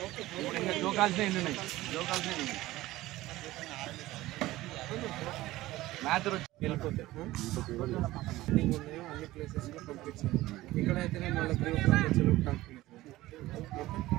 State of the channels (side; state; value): left; quieter; 17.2 dB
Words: ఇప్పుడు ఇంకా జోకాల్సిన ఎన్ని ఉన్నాయి? మ్యాథర్ వచ్చి వెళ్ళిపోతే అన్ని ప్లేసెస్లో పంపించాను. ఇక్కడైతేనే మళ్ళీ